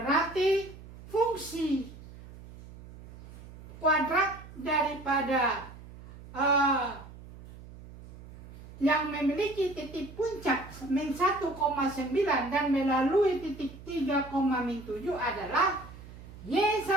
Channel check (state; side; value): noise; right; hum, 16 dB below the sound